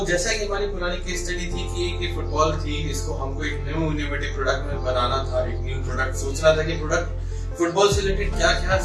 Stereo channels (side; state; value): both; identical; correlation 1.00